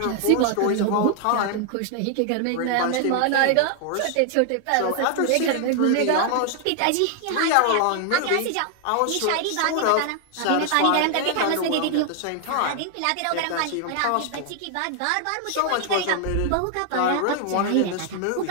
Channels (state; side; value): different; both; correlation 0.00